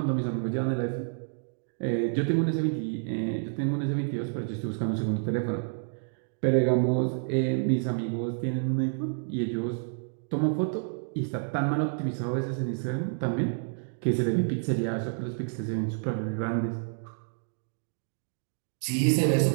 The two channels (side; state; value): left; silent; digital silence